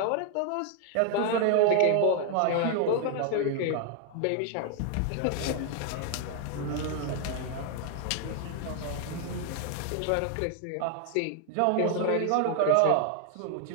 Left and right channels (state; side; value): different; both; correlation 0.00